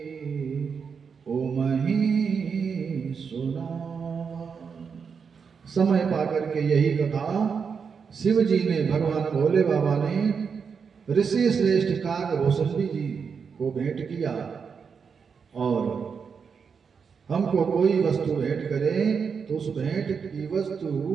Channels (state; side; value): quieter; left; 6.1 dB